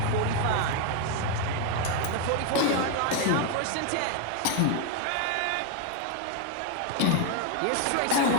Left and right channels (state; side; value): different; both; correlation 0.01